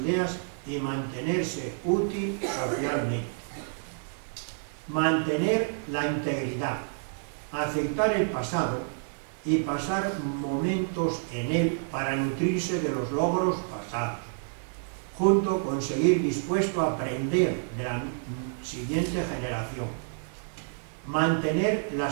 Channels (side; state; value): left; silent; 58 dB below the other